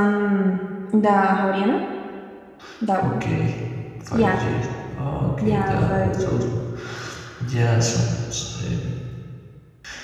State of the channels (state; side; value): identical; both; correlation 1.00